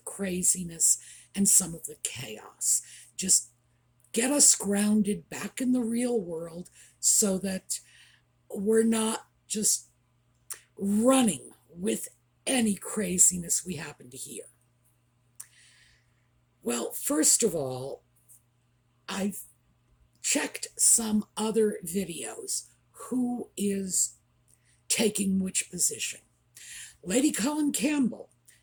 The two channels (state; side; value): identical; both; correlation 1.00